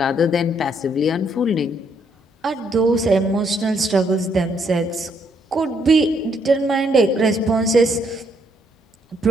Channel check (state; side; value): normal; both; correlation 0.72